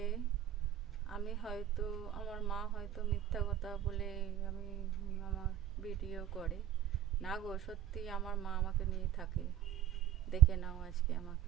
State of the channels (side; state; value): left; quieter; 11.7 dB